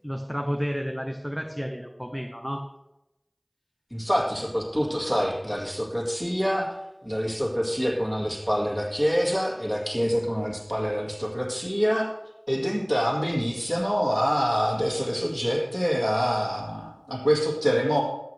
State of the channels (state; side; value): identical; both; correlation 1.00